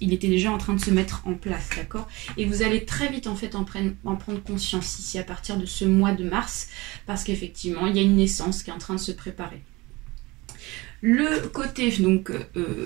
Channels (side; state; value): left; quieter; 22.6 dB